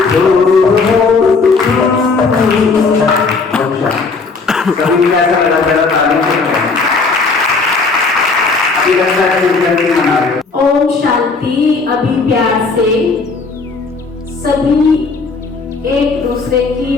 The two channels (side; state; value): right; quieter; 4.3 dB